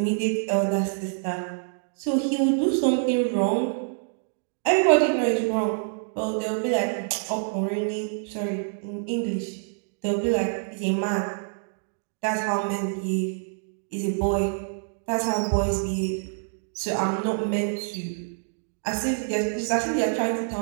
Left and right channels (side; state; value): left; silent; digital silence